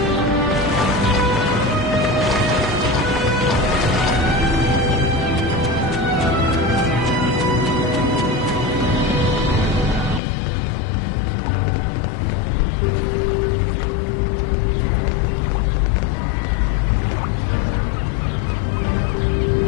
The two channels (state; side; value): drops out; right; at 10.2 s